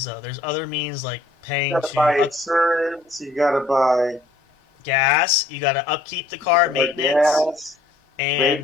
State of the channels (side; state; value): right; quieter; 3.0 dB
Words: though. There's other means like paying You gotta buy insurance. You gotta buy gas. You got to upkeep the car, maintenance, gas, and